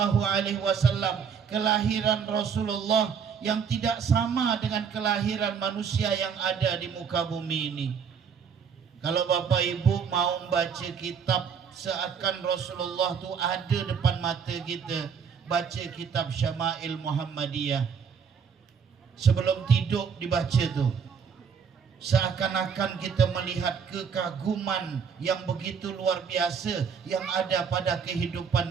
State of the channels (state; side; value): quieter; left; 6.6 dB